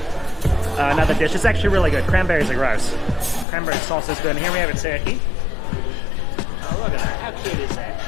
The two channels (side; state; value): right; drops out; at 3.5 s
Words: dish. It's actually really good. Cranberries are gross. Cranberry sauce is good. And here we have a turkey. cute is that?